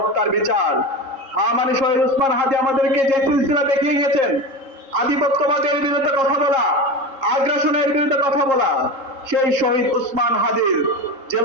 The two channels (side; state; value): left; late; 3.7 ms